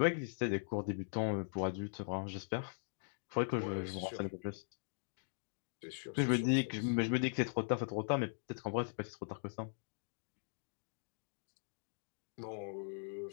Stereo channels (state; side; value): silent; right; digital silence